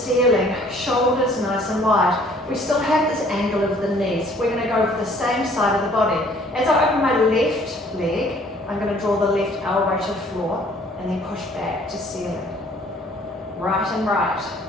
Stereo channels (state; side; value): normal; both; correlation 0.57